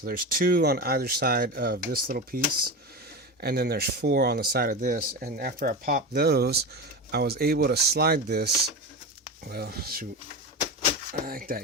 there's 2 on either side of this little piece, and then there's 4 on the side of this. And after I popped those, I was able to slide this, well, shoot, like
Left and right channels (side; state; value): both; normal; correlation 0.22